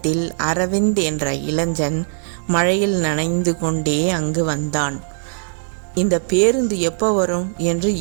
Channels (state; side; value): silent; left; 66 dB below the other